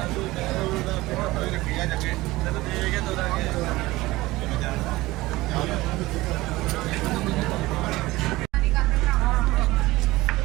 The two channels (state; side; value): quieter; left; 19.3 dB